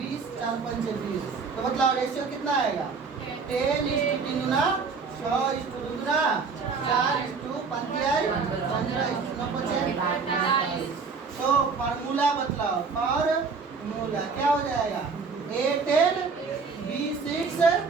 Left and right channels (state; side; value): quieter; left; 5.0 dB